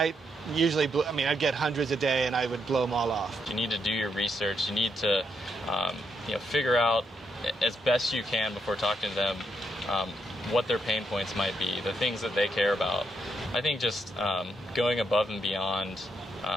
usually, I'd get hundreds a day, and I would blow them all off. You need to do your research. You need to, figure out as best you can before talking to them what their pain points might be, the things that they care about. I think just going above and beyond,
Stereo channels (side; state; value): both; normal; correlation 0.78